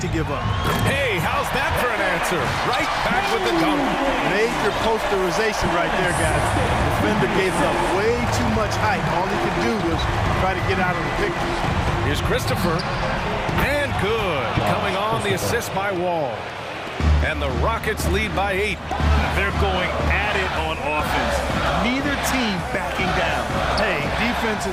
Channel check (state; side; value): identical; both; correlation 1.00